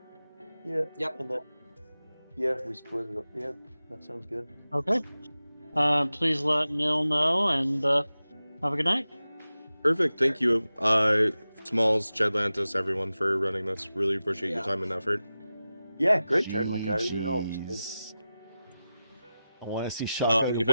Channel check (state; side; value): inverted; both; correlation -0.94